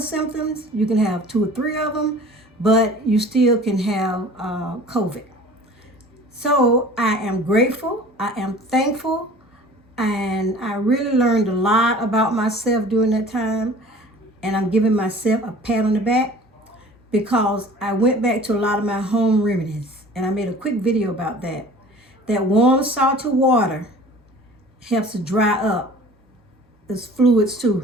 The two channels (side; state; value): both; normal; correlation 0.45